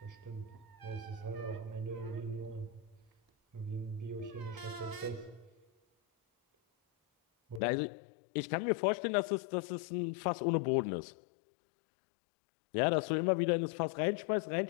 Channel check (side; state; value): right; drops out; at 7.6 s